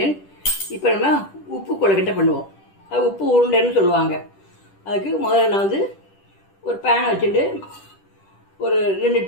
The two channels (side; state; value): right; late; 10 ms